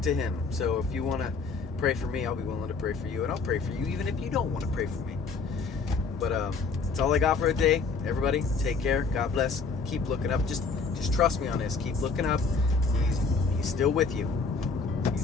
to him. So if you want to pray for me, I'll be willing to pray for you, and I'll pray for you even if you don't want to pray for me. But that's all I got for today. Everybody, take care. God bless. Keep looking up. Just trust me on this. Keep looking up. He's still with you.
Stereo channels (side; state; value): right; quieter; 4.6 dB